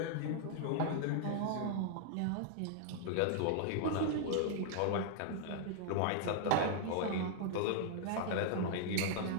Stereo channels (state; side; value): different; both; correlation -0.01